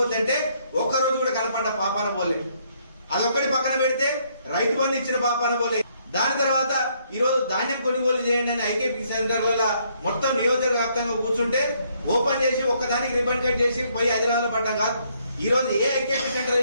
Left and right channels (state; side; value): inverted; both; correlation -0.70